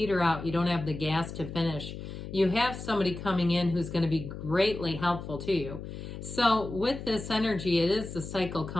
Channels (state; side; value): noise; left; hum, 9 dB below the sound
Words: out, you don't have the gas to finish. You have somebody coming in who's going to be greatly helpful to you. So with this energy, it is the cycle